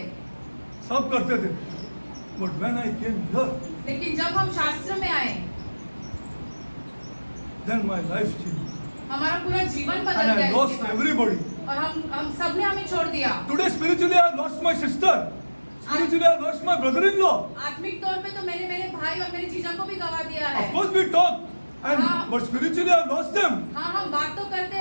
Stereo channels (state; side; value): inverted; both; correlation -1.00